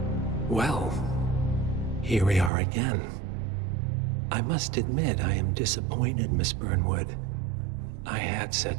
Well, here we are again. I must admit I am disappointed, Miss Burnwood. I had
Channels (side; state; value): left; drops out; at 2.5 s